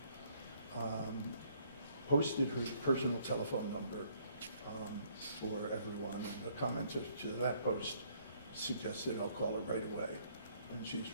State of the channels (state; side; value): inverted; both; correlation -0.66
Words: posted her personal telephone number for everyone. And the commenter to that post suggested I'll call her right away. And